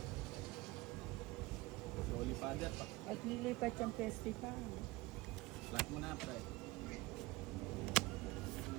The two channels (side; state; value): left; quieter; 20.8 dB